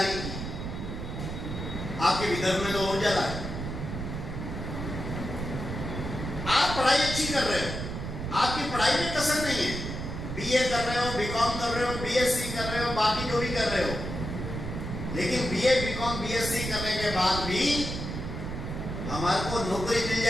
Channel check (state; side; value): noise; right; rumble, 5 dB below the sound